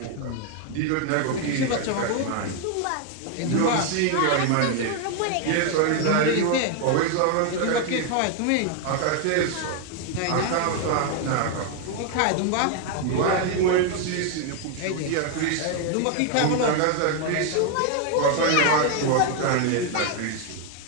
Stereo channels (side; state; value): both; different; correlation 0.01